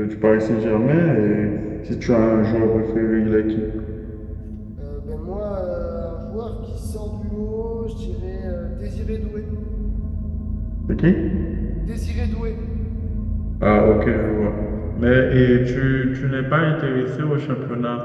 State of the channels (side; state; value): both; identical; correlation 1.00